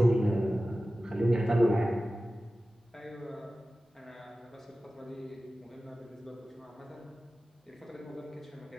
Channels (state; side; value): normal; both; correlation 0.95